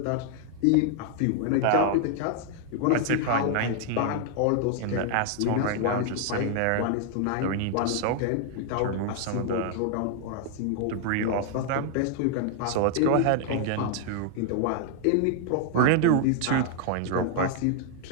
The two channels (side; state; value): both; different; correlation 0.00